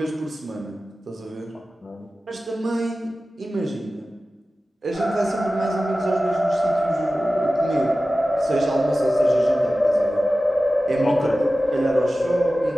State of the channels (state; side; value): normal; both; correlation 0.95